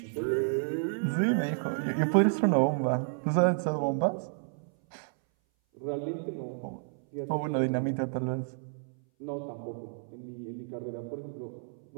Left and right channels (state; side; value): silent; left; 57 dB below the other